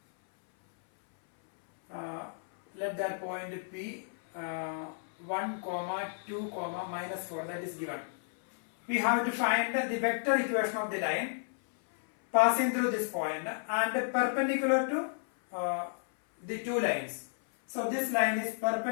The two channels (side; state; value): right; silent; 56 dB below the other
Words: Let that point P 1, 2, minus 4, that is given. We have to find the vector equation of the line passing through this point and perpendicular to the two lines. So this line is